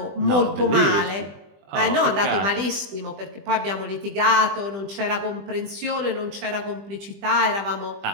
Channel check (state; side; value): late; left; 20 ms